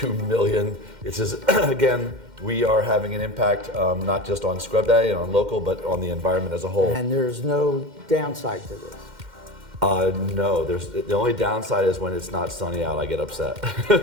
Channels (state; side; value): late; left; 2.1 ms